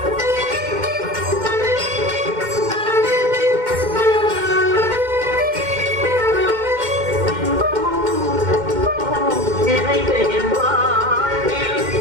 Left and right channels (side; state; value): left; late; 2.1 ms